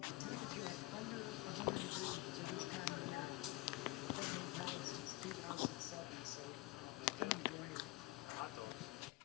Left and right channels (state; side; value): quieter; right; 21.2 dB